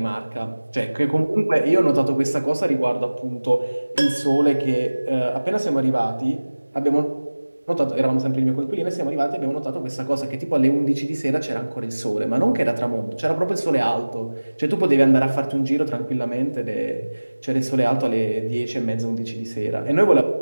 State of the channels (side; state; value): both; inverted; correlation -1.00